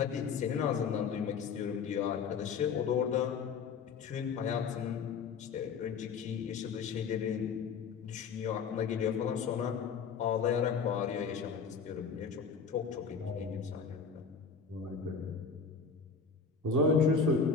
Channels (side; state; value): right; quieter; 5.7 dB